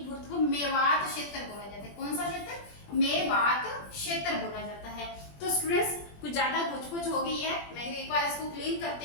भरतपुर, मेवात क्षेत्र बोला जाता है। कौन सा क्षेत्र? मेवात क्षेत्र बोला जाता है। तो स्टूडेंट्स, कुछ ज्यादा घुच हो गई है, मैं एक बार इसको क्लीन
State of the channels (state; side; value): late; right; 20 ms